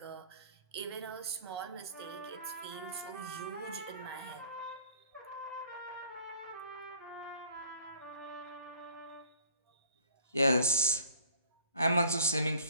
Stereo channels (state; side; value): inverted; both; correlation -0.53